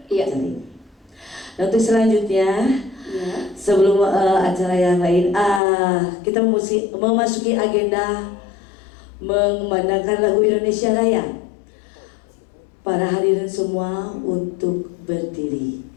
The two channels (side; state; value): right; drops out; at 5.6 s